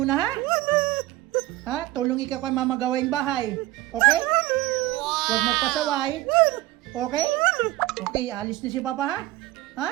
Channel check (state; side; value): quieter; left; 17.6 dB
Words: ha? Ha? Tulong ikaw kay Mama gawain bahay. Okay? Huwag magpasaway. Okay? Okay, alis na si Papa, ha? Ha?